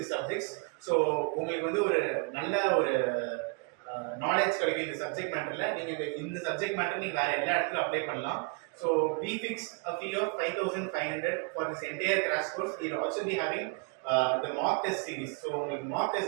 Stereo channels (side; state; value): left; quieter; 34.3 dB